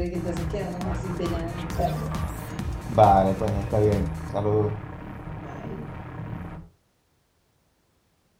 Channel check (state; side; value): identical; both; correlation 1.00